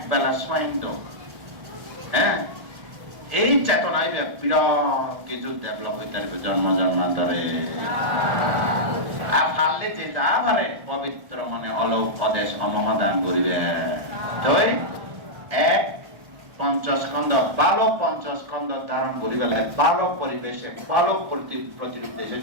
বেলা স্মাইন দো হ্যাঁ এই চেতনায় বিরাট কিছু ডেভেলপ হইতে পারবে জন্ম জন্মান্তরে আর পারলে যেটা পারে পবিত্র মনে অলোক অদেশ অমদান করিবে তাই এক পঞ্চস্কন্ধ বালক পঞ্চস্কন্ধ ধারণ করি বেলা বালক পরিবেশে বালক প্রতিরূপ দেশে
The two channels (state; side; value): late; left; 1.3 ms